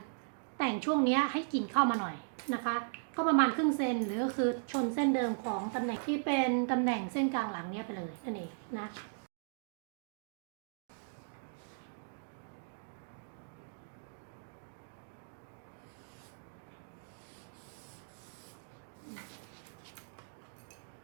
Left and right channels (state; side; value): silent; left; digital silence